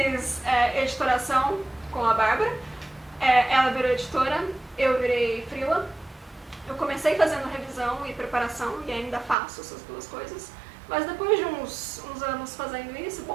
editoração com a Bárbara, ela virou editora, eu virei freela. Eu comecei fazendo revisão e preparação e ainda faço essas duas coisas. Mas depois de uns anos fazendo isso,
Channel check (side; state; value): left; drops out; at 9.3 s